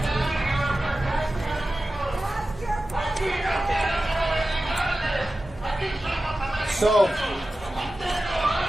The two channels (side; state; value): both; normal; correlation 0.94